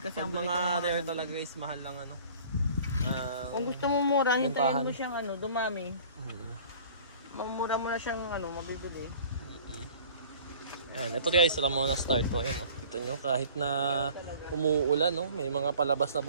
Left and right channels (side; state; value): both; inverted; correlation -0.48